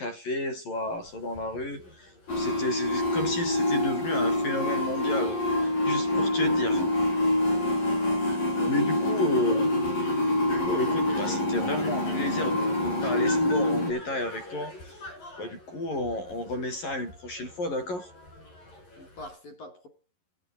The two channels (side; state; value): right; late; 11 ms